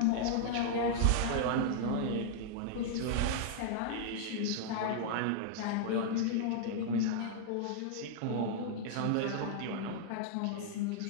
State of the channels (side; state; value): both; different; correlation -0.01